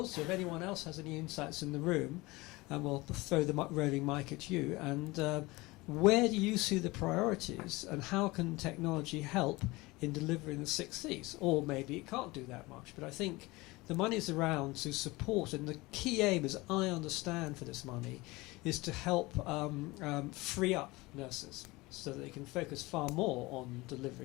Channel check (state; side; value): quieter; right; 22.0 dB